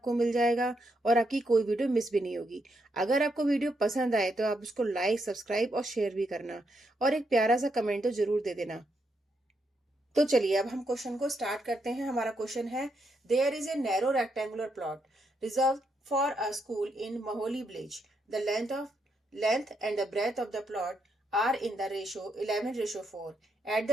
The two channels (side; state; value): both; normal; correlation 0.79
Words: मिल जाएगा और आपकी कोई वीडियो मिस भी नहीं होगी। अगर आपको वीडियो पसंद आए तो आप उसको लाइक, सब्सक्राइब और शेयर भी करना और एक प्यारा सा कमेंट तो जरूर दे देना। तो चलिए अब हम क्वेश्चन को स्टार्ट करते हैं। हमारा क्वेश्चन है, there is a narrow rectangular plot reserve for a school in Maholi village. The length and the breadth of the plot are in the ratio 11:4 at